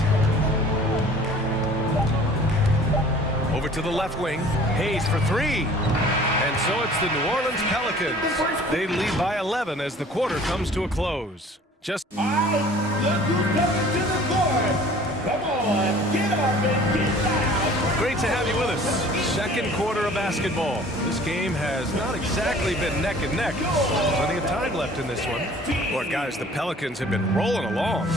Over to the left wing. Hayes for 3. And so it's the New Orleans Pelicans. They lead by 11 as the quarter comes to a close. Just... All right, look who's coming to the court. Come on, get up and get down. Great to have you with us. Second quarter of basketball. This game has not exactly been neck and neck. Plenty of time left in this one. Boy, guys, the Pelicans have been rolling along.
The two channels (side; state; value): both; normal; correlation 0.49